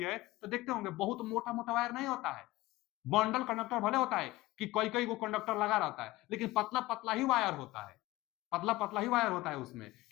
है तो देखते होंगे बहुत मोटा मोटा वायर नहीं होता है, बंडल कंडक्टर भले होता है कि कई कई को कंडक्टर लगा रहता है लेकिन पतला पतला ही वायर होता है, पतला पतला ही वायर होता है उसमें।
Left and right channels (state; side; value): quieter; right; 18.5 dB